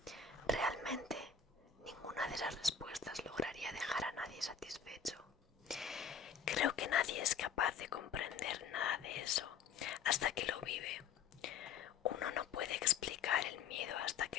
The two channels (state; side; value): quieter; right; 6.6 dB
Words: realmente ninguna de esas respuestas lograría dejar a nadie satisfecho. Creo que nadie es capaz de comprender nada de eso hasta que lo vive. Uno no puede explicar el miedo hasta